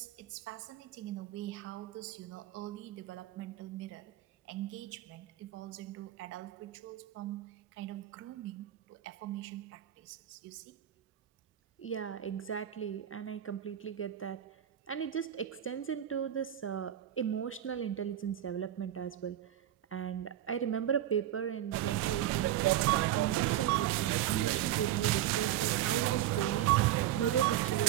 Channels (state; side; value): quieter; left; 12.1 dB